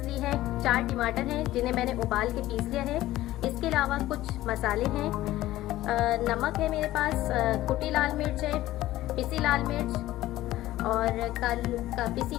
ली है। 4 टमाटर हैं जिन्हें मैंने उबाल के पीस लिया है। इसके अलावा कुछ मसाले हैं, नमक है मेरे पास, कुटी लाल मिर्च है, पिसी लाल मिर्च और पिसी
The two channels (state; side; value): quieter; right; 15.6 dB